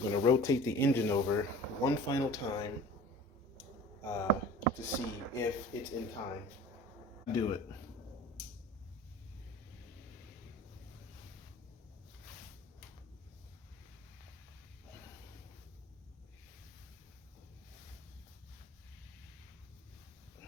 to rotate the engine over one final time to see if it's in time. Do it.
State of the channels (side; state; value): both; normal; correlation 0.42